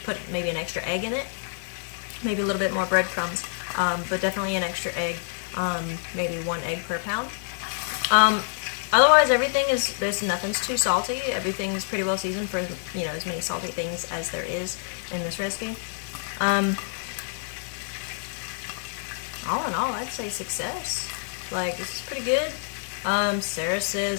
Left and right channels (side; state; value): right; silent; digital silence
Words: put maybe an extra egg in it. Maybe a little bit more breadcrumbs, but definitely an extra egg. Maybe 1 egg per pound. Otherwise, nothing's too salty. Everything's pretty well seasoned for, as many salty things as there is in this recipe. All in all, I'd say success. Like, this is pretty good. Sarah